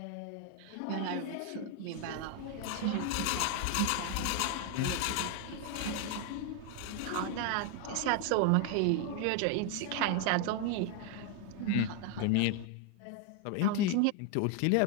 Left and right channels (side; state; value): both; different; correlation 0.01